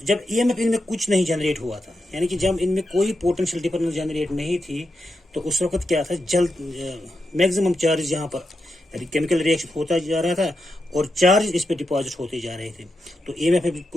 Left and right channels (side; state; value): both; normal; correlation 0.87